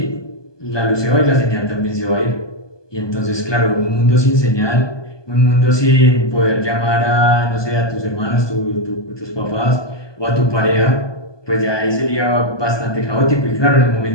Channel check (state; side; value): late; right; 1.2 ms